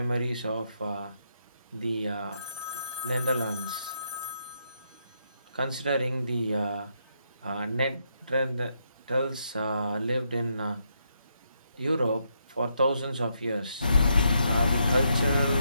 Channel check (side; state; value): both; inverted; correlation -0.78